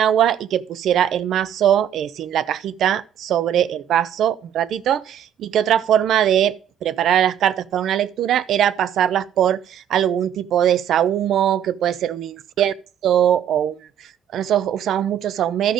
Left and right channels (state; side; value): quieter; left; 9.9 dB